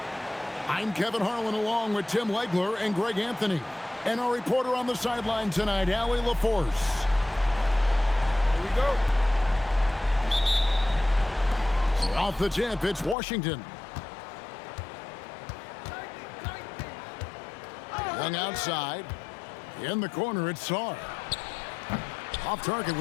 I'm Kevin Harlan along with Tim Legler and Greg Anthony. And our reporter on the sideline tonight, Allie LaForce. Here we go. Off the tip, it's Washington. Young outside. In the corner, it's Sarr. Off target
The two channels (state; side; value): drops out; right; at 13.2 s